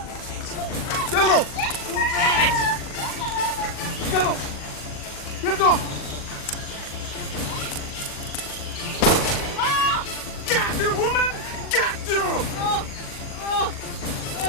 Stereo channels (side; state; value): right; late; 40 ms